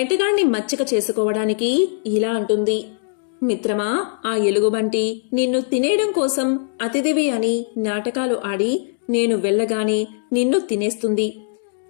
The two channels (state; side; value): silent; right; 65 dB below the other